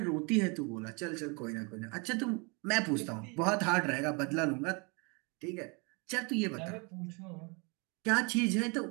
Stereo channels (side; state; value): left; quieter; 31.2 dB